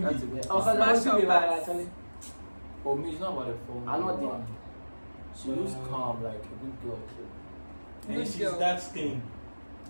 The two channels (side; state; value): both; inverted; correlation -1.00